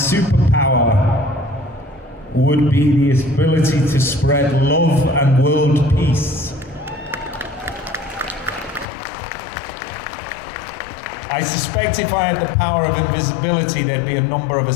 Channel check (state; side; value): drops out; right; at 8.8 s